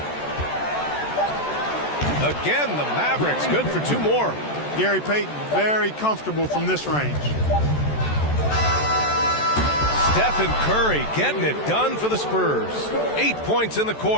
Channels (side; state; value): right; late; 14 ms